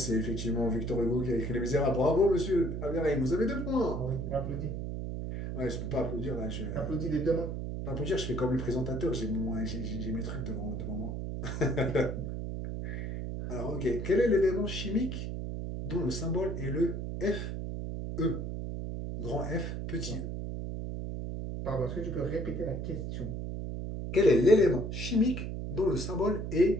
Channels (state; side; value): noise; right; hum, 4 dB below the sound